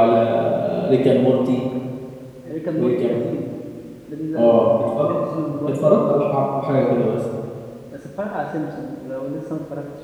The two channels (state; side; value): identical; both; correlation 1.00